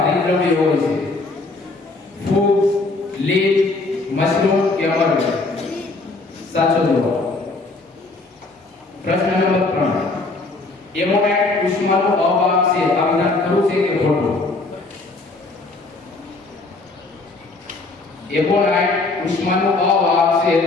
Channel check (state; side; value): quieter; right; 3.4 dB